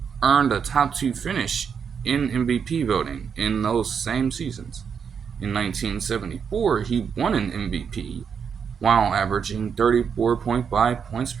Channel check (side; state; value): left; quieter; 6.8 dB